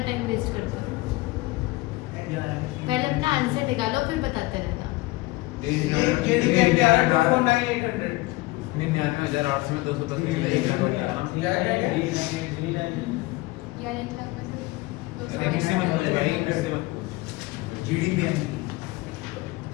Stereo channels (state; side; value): quieter; right; 20.8 dB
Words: टाइम वेस्ट करते हो। पहले अपना आंसर निकालो फिर बताते रहना। 99,800 में 210 निकला, 1 लाख बचा ना। किससे मत पूछ भाई, किससे मत पूछ। जीडीपी